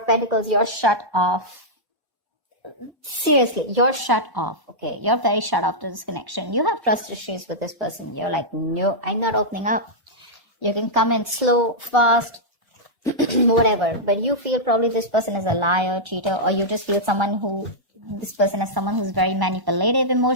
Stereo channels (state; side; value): late; left; 1.0 ms